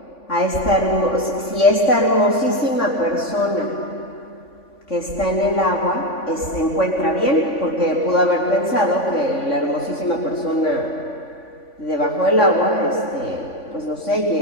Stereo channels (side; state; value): right; late; 3.5 ms